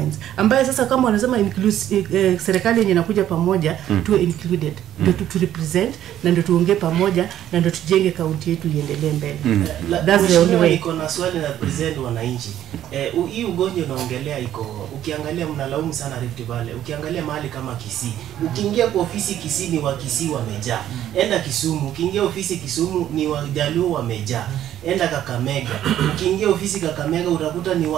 ambaye sasa kama wanasema serikali yenye inakuja pamoja tuwe included, ndio tu represent na ndio tuongee pamoja na ndio tujenge kaunti yetu iendelee mbele. That's the only way. Iko na swali na present wananchi. Hii ugonjwa unaongelea iko, ukiangalia mnalaumu sana Rift Valley, ukiangalia mahali kama Kisii, ukiingia kwa ofisi Kisii ni wa Kisii wamejaa, enda Kisumu, ukiingia ofisi Kisumu ni wa Jaluo wamejaa, enda Kakamega, ukiingia ofisi Kakamega utakuta ni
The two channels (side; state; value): left; quieter; 11.7 dB